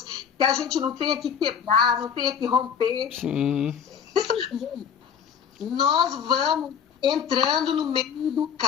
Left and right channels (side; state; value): right; quieter; 7.5 dB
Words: que a gente não tenha que quebrar, não tenha que romper. Sim. Nós vamos entrando no meio do